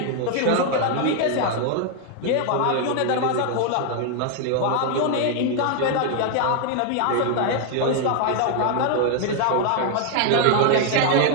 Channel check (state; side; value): different; both; correlation 0.00